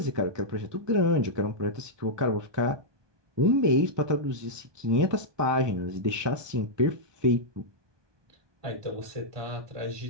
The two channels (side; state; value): left; late; 1.2 ms